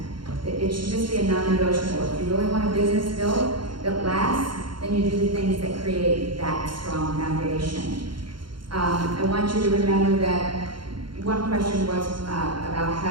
It should just be a non-negotiable. If you really want a business built that lasts, then you do the things that create that strong foundation. I want you to remember that one question was about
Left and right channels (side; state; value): left; late; 0.72 ms